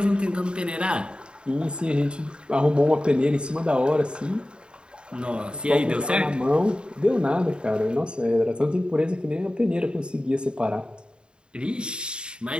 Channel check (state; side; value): late; left; 0.051 ms